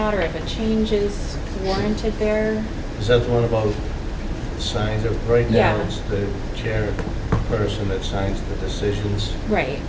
or if a change is warranted there. Is that the one about signs? Right now, Yeah. it's the chairperson that signs the decisions. Right.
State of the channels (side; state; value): both; identical; correlation 1.00